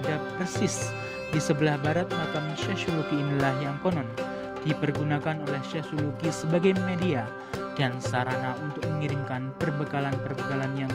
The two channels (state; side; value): identical; both; correlation 1.00